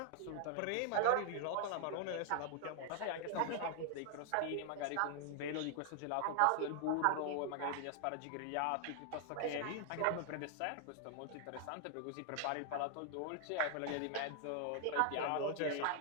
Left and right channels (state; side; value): different; both; correlation 0.00